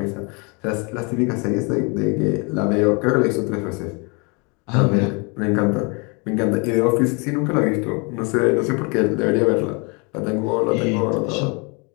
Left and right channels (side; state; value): right; quieter; 31.6 dB